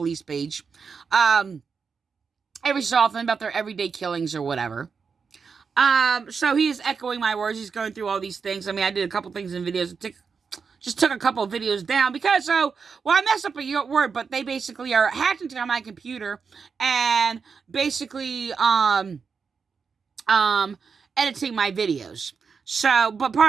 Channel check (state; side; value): quieter; left; 5.6 dB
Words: page, every so often, about their everyday killings or whatever. So he is echoing my words. He's going through all these things. I mean, I did a couple things in videos. Just took a couple of videos down because, I messed up a word, but they basically are hacked into my computer and basically, editing my videos. So, but